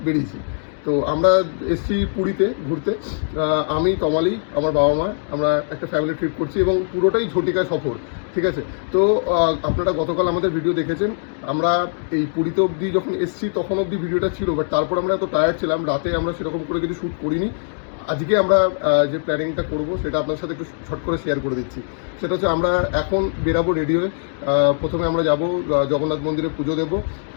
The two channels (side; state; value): right; silent; digital silence